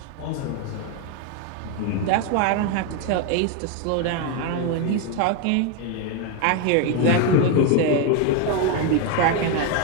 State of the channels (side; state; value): both; different; correlation 0.02